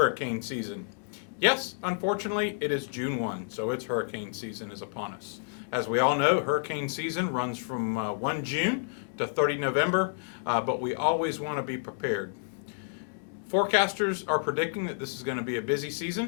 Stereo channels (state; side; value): silent; right; digital silence